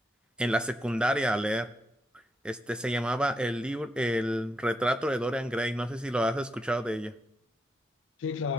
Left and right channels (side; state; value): both; normal; correlation 0.81